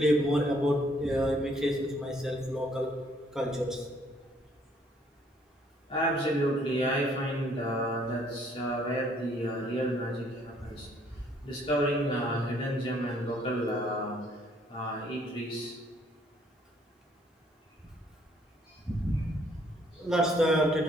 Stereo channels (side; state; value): both; normal; correlation 0.65